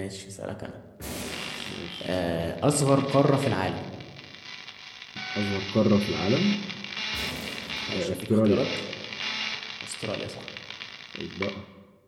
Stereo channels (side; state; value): both; identical; correlation 1.00